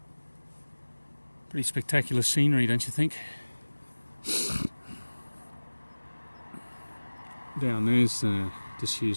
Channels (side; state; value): both; inverted; correlation -1.00